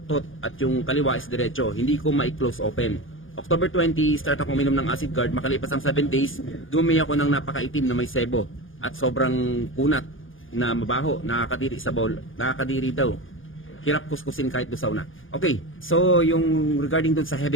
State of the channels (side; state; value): right; late; 0.58 ms